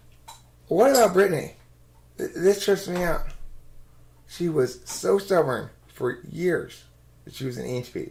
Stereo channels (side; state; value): both; identical; correlation 1.00